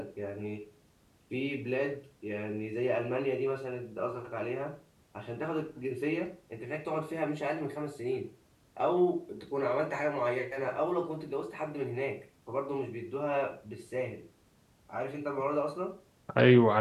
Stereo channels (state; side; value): identical; both; correlation 1.00